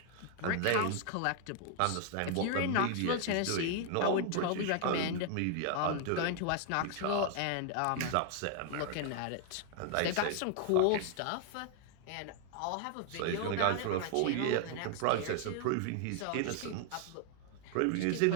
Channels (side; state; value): both; different; correlation 0.00